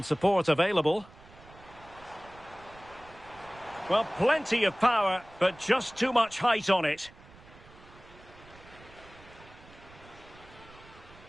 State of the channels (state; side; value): noise; right; rumble, 22 dB below the sound